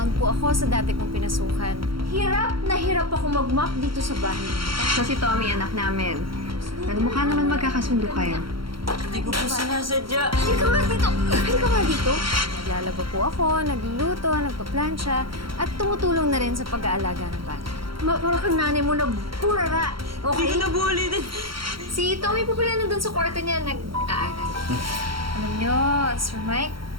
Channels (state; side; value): late; left; 0.74 ms